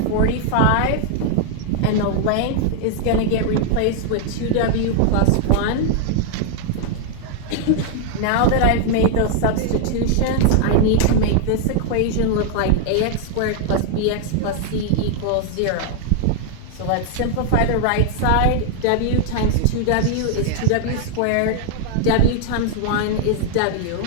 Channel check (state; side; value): different; both; correlation 0.00